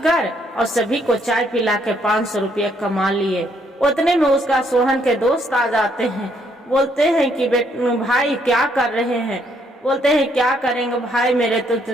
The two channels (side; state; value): both; normal; correlation 0.70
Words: और सभी को चाय पिला के 500 रुपया कमा लिए। उतने में उसका सोहन के दोस्त आ जाते हैं। बोलते हैं कि भाई क्या कर रहे हैं। बोलते हैं क्या करेंगे भाई, मेरे तो